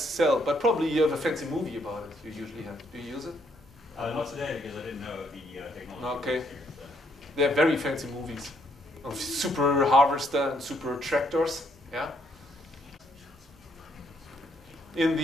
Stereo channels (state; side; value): normal; both; correlation 0.71